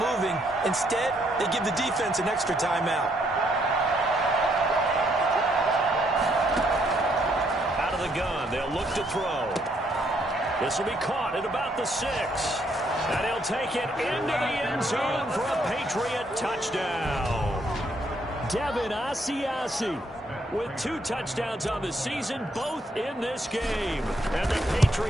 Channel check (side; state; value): both; normal; correlation 0.72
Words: Instead, they give the defense an extra timeout. Out of the gun, they'll look to throw. This will be caught at about the 6. And he'll take it into the end zone for a Patriot touchdown. Devin Asiasi with 2 touchdowns on the season, both in this game. And the